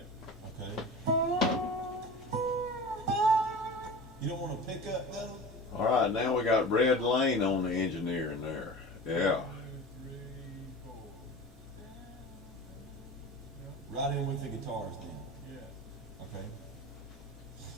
Okay. You don't want to pick up though? All right, now we got Red Lane on the engineering there. Yeah. right in with the guitars then. Yeah. Okay.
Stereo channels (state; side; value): normal; both; correlation 0.35